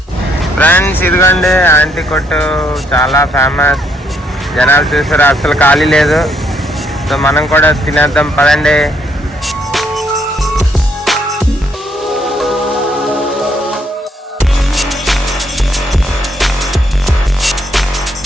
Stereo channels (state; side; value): normal; both; correlation 0.71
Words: ఫ్రెండ్స్ ఇదిగోండి ఆంటీ కొట్టు, చాలా ఫేమస్. జనాలు చూసారు, అసలు ఖాళీ లేదు. సో మనం కూడా తినేద్దాం పదండి.